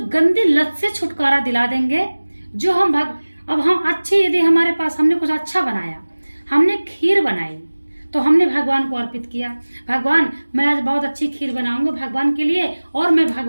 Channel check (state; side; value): inverted; both; correlation -1.00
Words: गंदी लत से छुटकारा दिला देंगे जो अब हम अच्छे, यदि हमारे पास हमने कुछ अच्छा बनाया, हमने खीर बनाई तो हमने भगवान को अर्पित किया। भगवान मैं आज बहुत अच्छी खीर बनाऊंगा भगवान के लिए और मैं